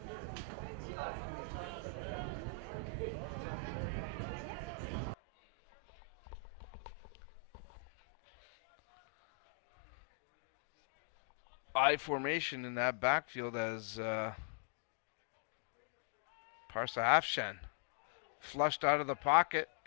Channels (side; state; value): right; drops out; at 5.2 s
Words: I formation in that backfield as Parsa Afshan flushed out of the pocket.